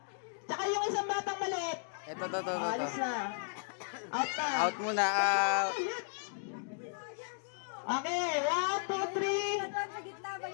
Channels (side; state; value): right; silent; digital silence